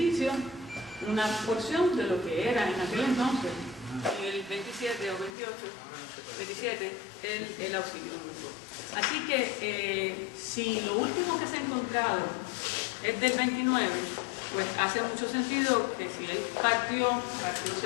una porción de lo que era en aquel entonces, en el 27 o 28, 27, el Auxilio Mutuo. Así que si lo último que se ha encontrado es del 29, pues hace mucho sentido que si él partió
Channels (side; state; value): right; drops out; at 5.3 s